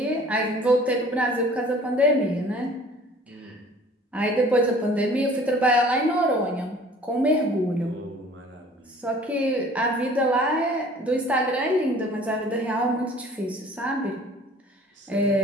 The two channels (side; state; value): both; normal; correlation 0.50